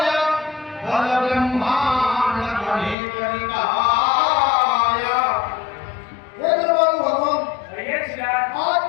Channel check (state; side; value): drops out; right; at 3.0 s